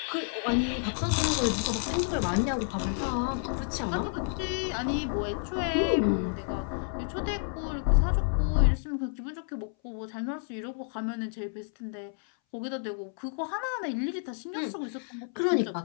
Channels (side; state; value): right; silent; 58 dB below the other